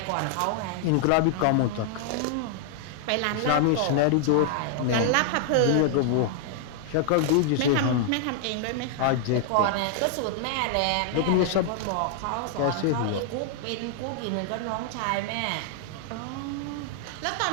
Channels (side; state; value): both; different; correlation 0.00